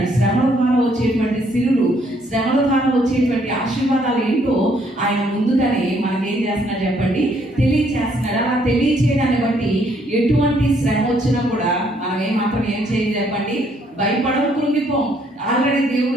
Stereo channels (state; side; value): normal; both; correlation 0.68